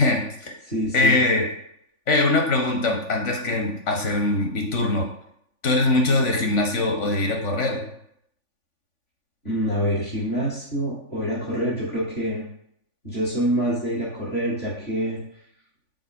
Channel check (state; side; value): late; right; 3.5 ms